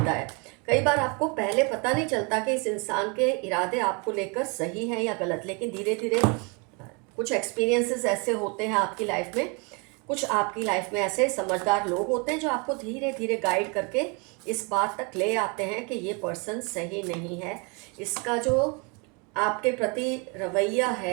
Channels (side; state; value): left; quieter; 32.3 dB